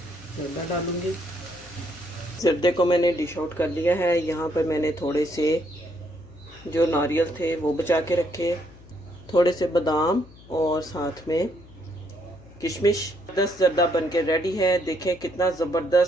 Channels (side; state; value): left; noise; hum, 22 dB below the sound